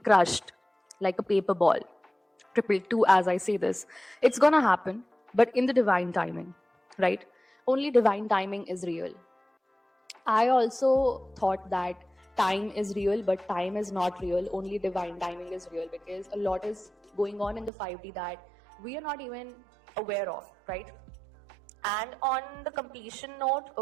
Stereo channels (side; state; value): left; drops out; at 17.7 s